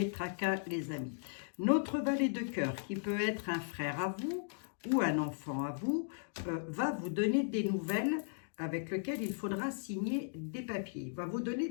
tracas, les amis. Notre valet de cœur, qui peut être un frère à vous ou un enfant à vous, va vous donner des nouvelles avec lesquelles il faudra signer des papiers. Il va vous donner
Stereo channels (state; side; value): silent; right; digital silence